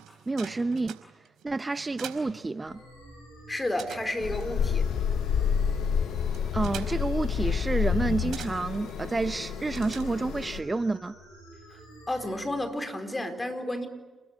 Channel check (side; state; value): both; normal; correlation 0.81